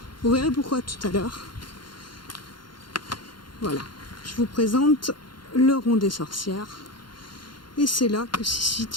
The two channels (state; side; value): late; right; 0.72 ms